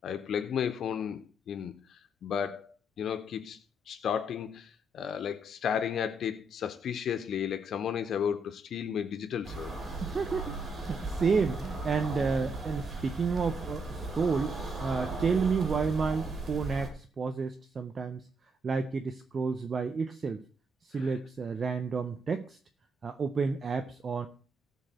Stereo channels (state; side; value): normal; both; correlation 0.75